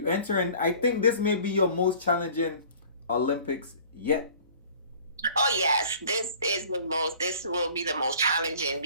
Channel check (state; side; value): inverted; both; correlation -0.49